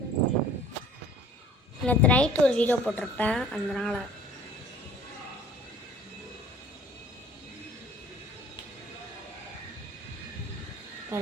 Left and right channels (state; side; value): normal; both; correlation 0.51